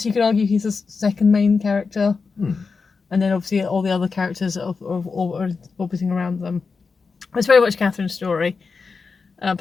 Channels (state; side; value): quieter; right; 4.8 dB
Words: you could argue he's the second main character, and then obviously all the other characters are orbiting around them. It's very much Catherine's story,